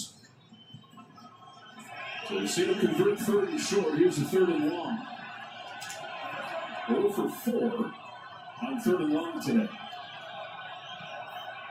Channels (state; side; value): identical; both; correlation 1.00